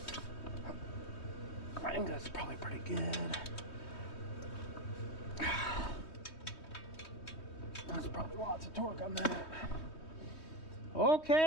I think that's probably pretty good. That's probably lots of torque on that.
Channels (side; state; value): right; late; 3.2 ms